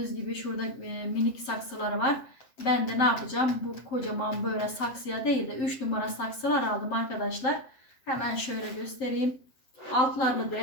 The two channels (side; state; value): right; late; 7.7 ms